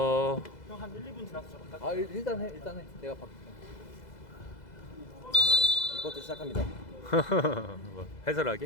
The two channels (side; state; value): right; late; 2.0 ms